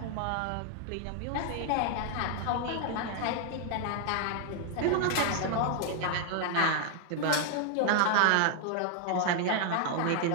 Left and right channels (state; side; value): different; both; correlation 0.00